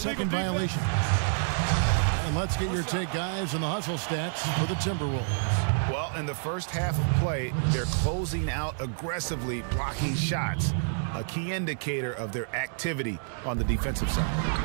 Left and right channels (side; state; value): left; silent; digital silence